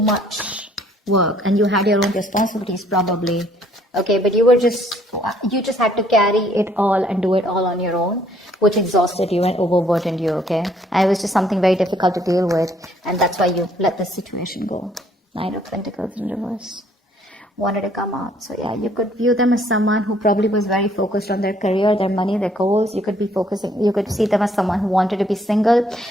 much work, and you had your own responsibilities probably. Okay, but you just had to carry it all and do it all on your own, which exhausted you and overburdened you, okay? And it was just something very difficult to deal with, and that's why you let this situation go. Nine of Pentacles in reverse. Wanted to come out. So yeah, you could view them as someone who probably was very focused on their career, their money, their goals. You could see them as someone who wanted to be single.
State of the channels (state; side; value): normal; both; correlation 0.64